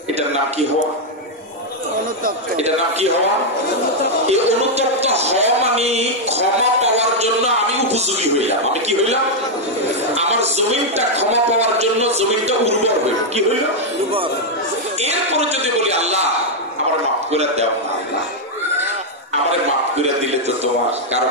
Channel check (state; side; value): normal; both; correlation -0.01